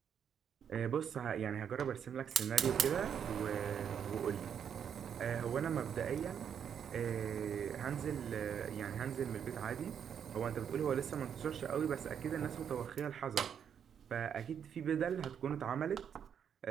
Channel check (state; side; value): quieter; left; 8.1 dB